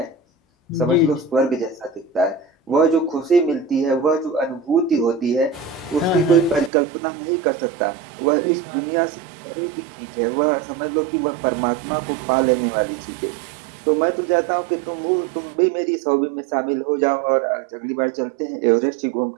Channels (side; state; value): left; drops out; at 6.7 s